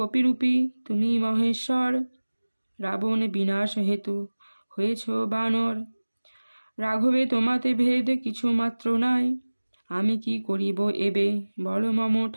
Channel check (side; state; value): both; inverted; correlation -1.00